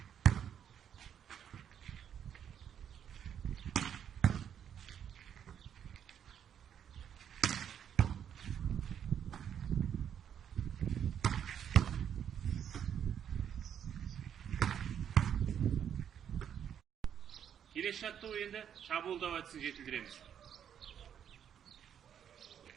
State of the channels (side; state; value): left; quieter; 8.9 dB